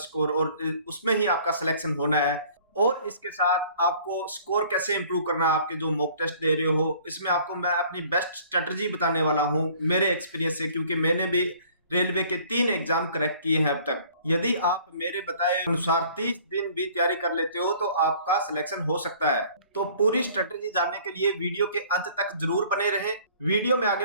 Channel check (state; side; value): inverted; both; correlation -0.53